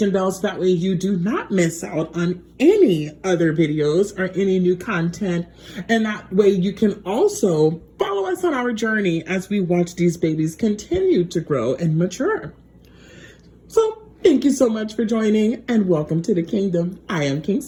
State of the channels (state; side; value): identical; both; correlation 1.00